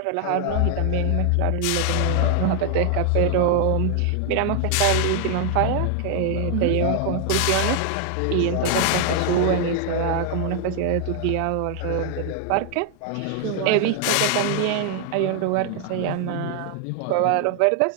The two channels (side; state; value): both; different; correlation 0.00